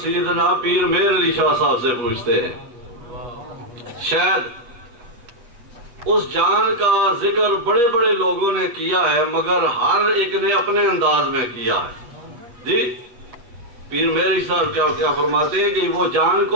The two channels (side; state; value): left; late; 8.4 ms